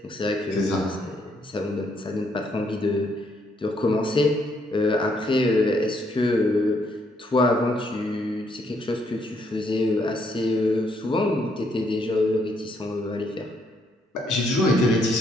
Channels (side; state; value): both; normal; correlation 0.72